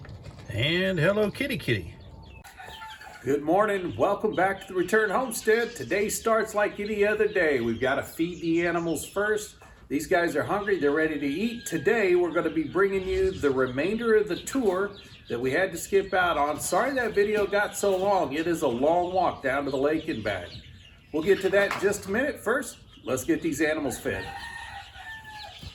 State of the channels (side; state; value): both; identical; correlation 1.00